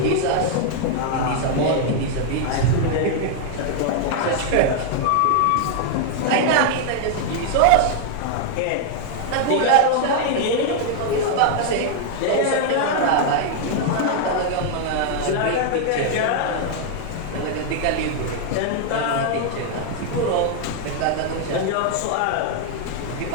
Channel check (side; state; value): both; different; correlation 0.00